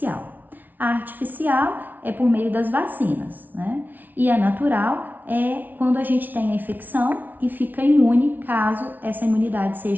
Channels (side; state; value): left; late; 0.083 ms